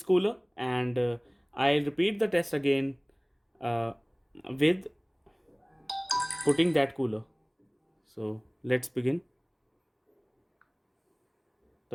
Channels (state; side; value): identical; both; correlation 1.00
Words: cooler, and I'll repeat the test again uh, with putting that cooler. So let's begin